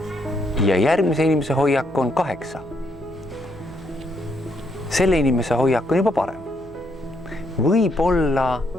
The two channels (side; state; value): right; noise; hum, 20 dB below the sound